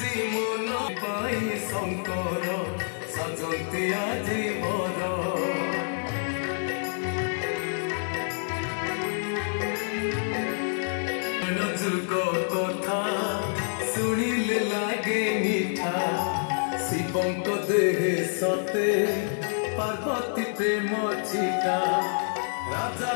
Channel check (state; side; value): silent; right; 59 dB below the other